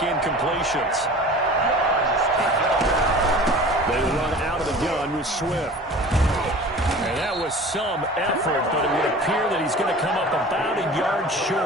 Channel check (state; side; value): normal; both; correlation 0.41